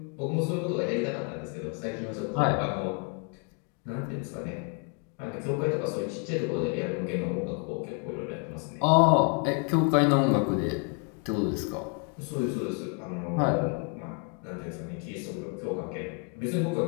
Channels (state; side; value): quieter; right; 35.6 dB